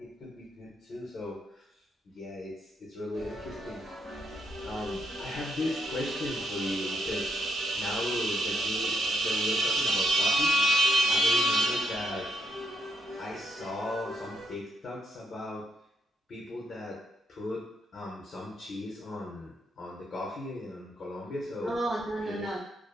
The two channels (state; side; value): normal; both; correlation 0.79